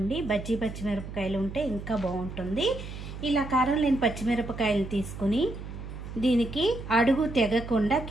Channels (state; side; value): noise; right; hum, 10 dB below the sound